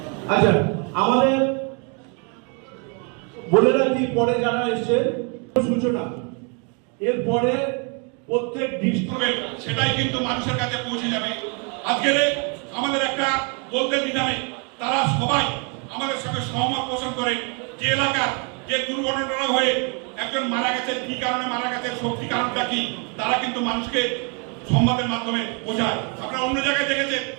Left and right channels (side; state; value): left; quieter; 35.8 dB